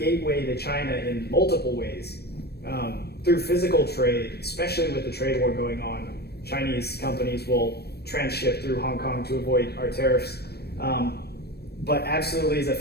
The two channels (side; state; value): right; late; 0.47 ms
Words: to China in multiple ways. Through physical trade, especially with the trade war going on, Chinese companies will transship through Hong Kong to avoid our tariffs. But absolutely is a